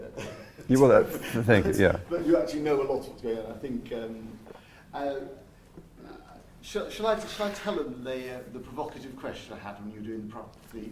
You will, thank you, yeah. But you actually know a lot of what's going on. I think, shall I tell them the provocative question I had when you were doing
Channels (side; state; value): both; identical; correlation 1.00